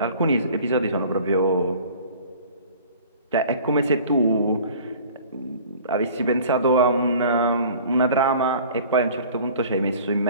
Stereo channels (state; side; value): inverted; both; correlation -0.47